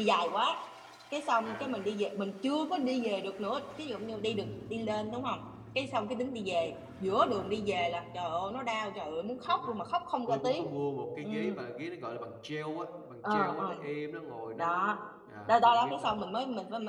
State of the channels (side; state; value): both; identical; correlation 1.00